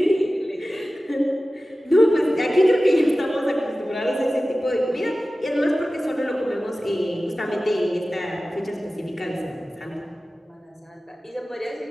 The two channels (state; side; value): normal; both; correlation 0.96